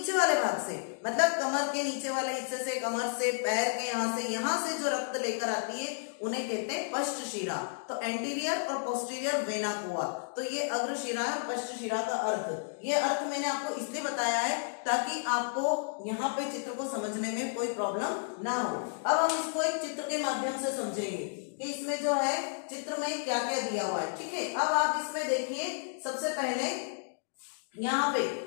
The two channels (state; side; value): silent; right; digital silence